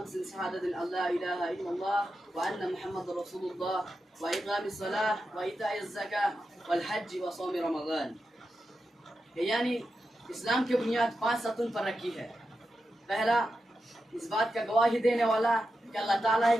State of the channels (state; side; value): normal; both; correlation 0.89